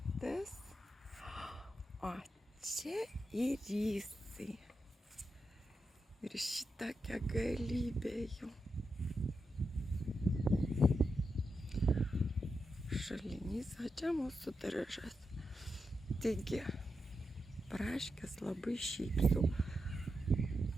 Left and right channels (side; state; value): both; normal; correlation 0.87